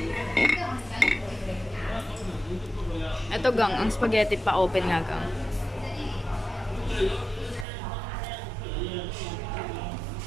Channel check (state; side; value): drops out; left; at 7.7 s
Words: Ito, Gang. Ang spaghetti pa open nga, Gang.